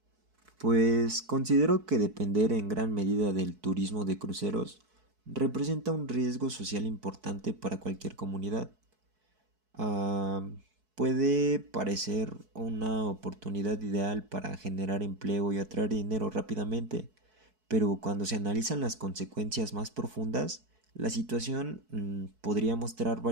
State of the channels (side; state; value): left; late; 4.6 ms